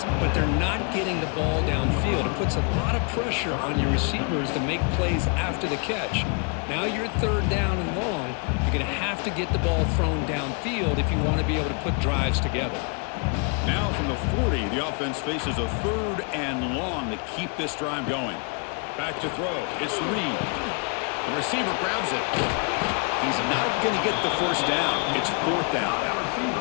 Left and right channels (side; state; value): right; quieter; 36.8 dB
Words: but they're not getting the ball downfield. It puts a lot of pressure on your receivers to make plays after the catch. Now you're third down and long. You're going to have to get the ball thrown downfield if you want to be able to put drives together. Now from the 40, the offense faces a third and long to keep this drive going. Back to throw. It's Reed. The receiver grabs it. He's not going to get the first down. It's fourth down.